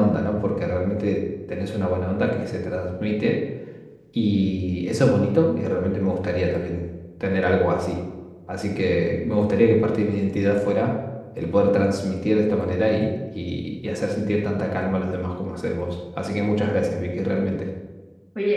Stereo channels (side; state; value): both; identical; correlation 1.00